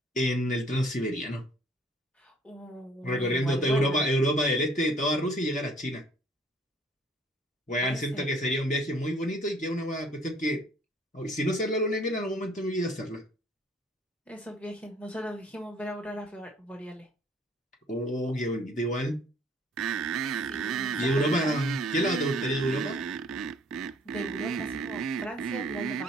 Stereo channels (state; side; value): normal; both; correlation 0.57